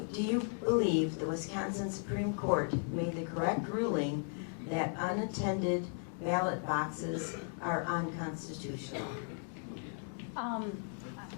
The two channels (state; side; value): silent; right; 54 dB below the other